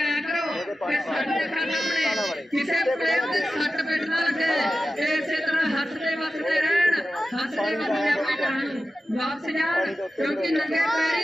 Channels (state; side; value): normal; both; correlation 0.93